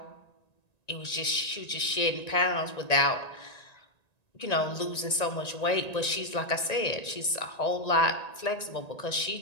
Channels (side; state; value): right; late; 1.9 ms